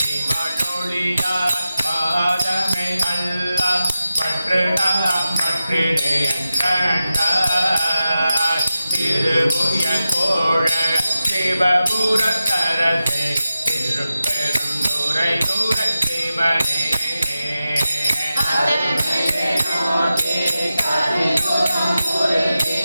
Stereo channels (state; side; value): inverted; both; correlation -0.92